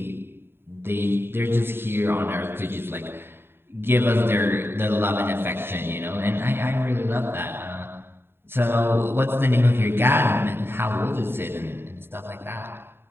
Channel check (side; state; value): left; late; 0.11 ms